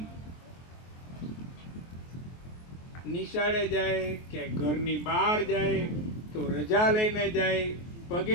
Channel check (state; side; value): late; right; 23 ms